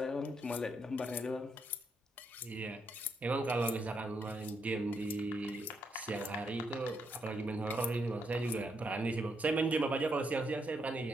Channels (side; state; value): both; normal; correlation 0.78